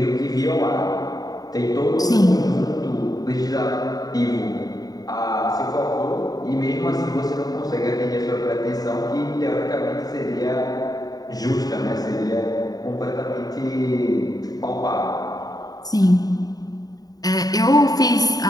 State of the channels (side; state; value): right; late; 0.18 ms